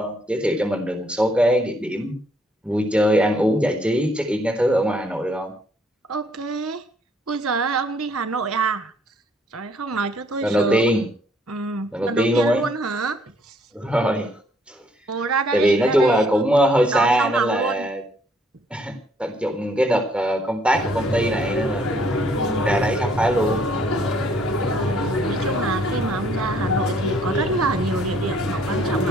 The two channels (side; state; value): both; normal; correlation 0.65